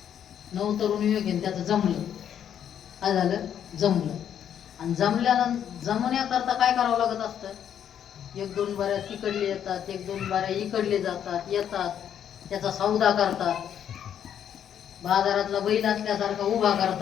नवतरुण युवक आहे, त्याचं जमलं. काय झालं? जमलं. आणि जमण्याकरता काय करावं लागत असतं? 1-2 बाऱ्या तिकडले येतात, 1-2 बाऱ्या इकडले जातात, येतात, त्याचा सौदा करतात. बाजारातला बैल असल्यासारखा उभा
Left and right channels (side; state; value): right; quieter; 9.3 dB